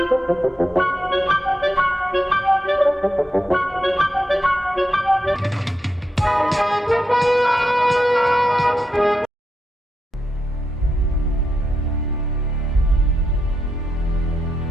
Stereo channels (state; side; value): normal; both; correlation 0.85